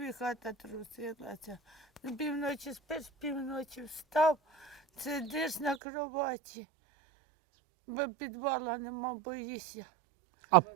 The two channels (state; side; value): drops out; left; at 5.8 s